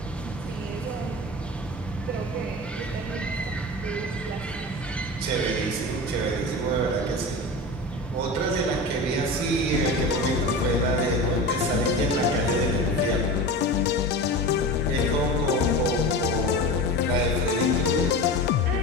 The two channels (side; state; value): both; normal; correlation 0.29